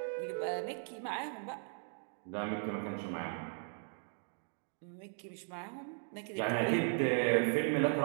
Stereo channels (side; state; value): left; silent; 53 dB below the other